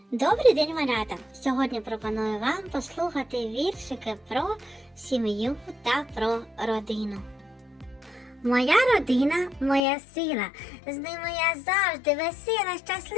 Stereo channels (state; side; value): drops out; right; at 9.8 s